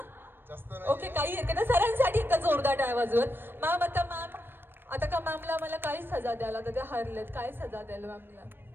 ओके, काही हरकत नाही. सरांसाठी एकदा जोरदार टाळ्या वाजवत. मॅम आता का मॅमला मला काय सजा द्याल? आता ते हरलेत, काय सजा द्याल मॅमला?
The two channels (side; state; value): left; late; 0.099 ms